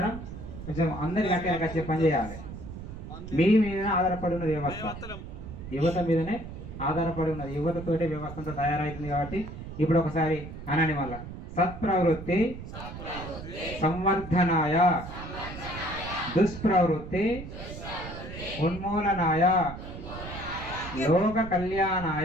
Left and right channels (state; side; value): noise; right; rumble, 11 dB below the sound